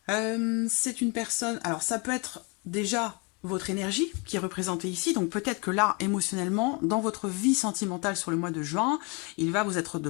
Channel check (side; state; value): right; quieter; 31.0 dB